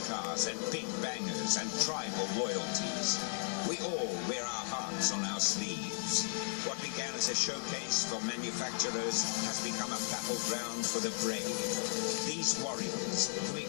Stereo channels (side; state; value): right; silent; digital silence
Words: cars and big bangers and tribal loyalties. We all wear our hearts on our sleeves. What began as a showcase for manufacturers has become a battleground for the brave. These warriors who